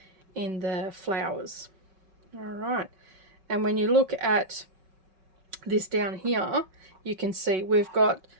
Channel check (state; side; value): late; left; 5.4 ms